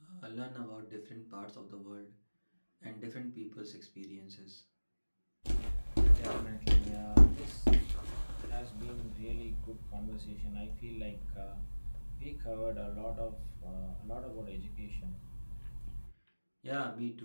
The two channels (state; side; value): inverted; both; correlation -1.00